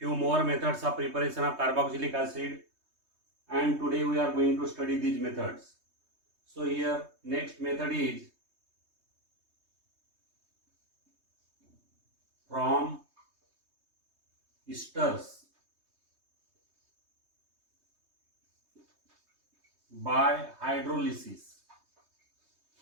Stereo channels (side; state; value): left; late; 3.2 ms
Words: more methods of preparation of carboxylic acid, and today we are going to study these methods. So here, next method is from esters by hydrolysis.